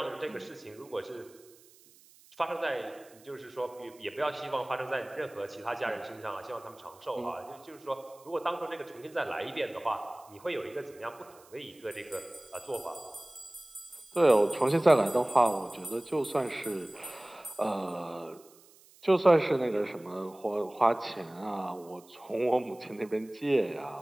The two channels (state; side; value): noise; right; hiss, 26 dB below the sound